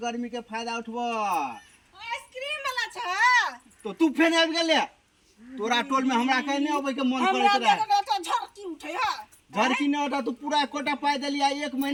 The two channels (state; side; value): identical; both; correlation 1.00